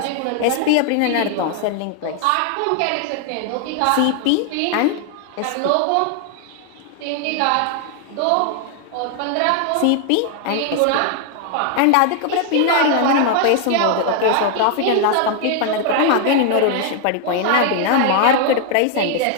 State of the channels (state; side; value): different; both; correlation 0.00